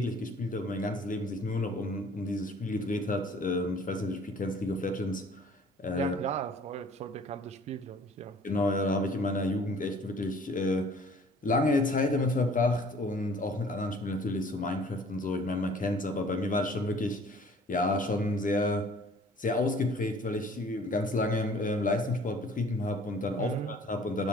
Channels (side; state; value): both; normal; correlation 0.53